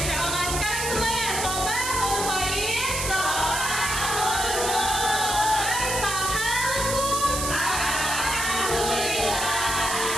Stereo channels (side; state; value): right; noise; hiss, 2 dB below the sound